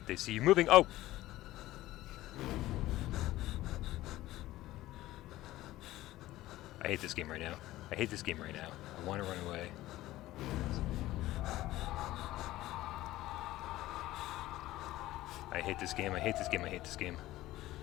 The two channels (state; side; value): quieter; right; 16.2 dB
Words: they see you moving. Oh! I hate this game right now. I hate this game right now. I want to run away. I hate this game. I hate this game. I hate this game.